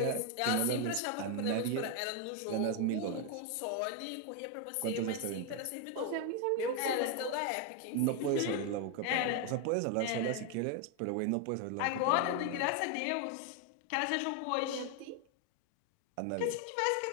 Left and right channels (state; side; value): different; both; correlation 0.01